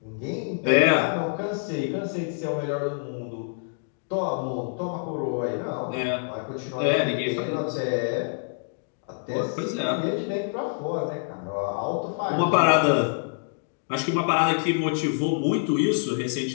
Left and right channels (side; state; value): right; silent; digital silence